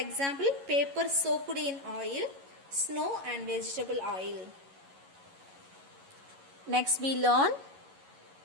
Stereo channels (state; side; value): late; left; 11 ms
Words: paper soaked in oil, snow and vegetable oil. Next we learn